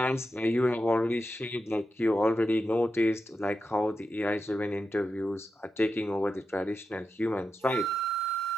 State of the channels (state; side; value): normal; both; correlation 0.89